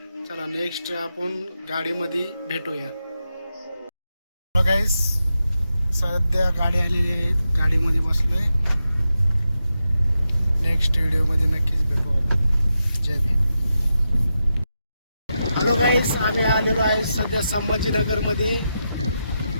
चला नेक्स्ट आपण गाडीमध्ये भेटूया. हॅलो गाईस, सध्या गाडी आलेली आहे, गाडीमध्ये बसलोय. नेक्स्ट व्हिडिओमध्ये नक्कीच भेटू आपण. जय भीम. हॅलो गाईस, आम्ही आलेलो आहे सध्या संभाजीनगरमध्ये.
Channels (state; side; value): inverted; both; correlation -0.88